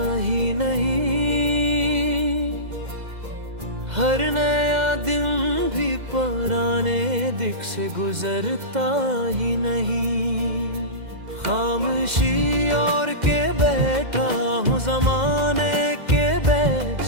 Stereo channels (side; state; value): left; late; 2.0 ms